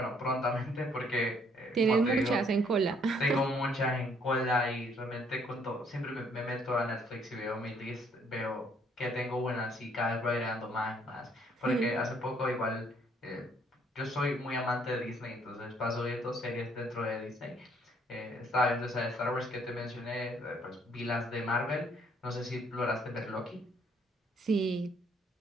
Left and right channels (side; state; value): both; normal; correlation 0.65